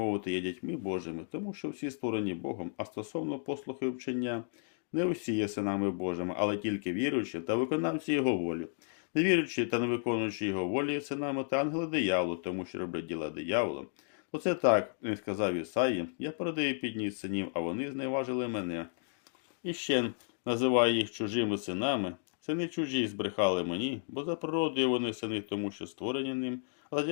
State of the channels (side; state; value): right; silent; digital silence